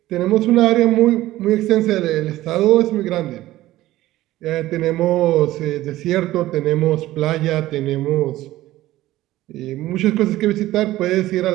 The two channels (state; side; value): quieter; left; 15.9 dB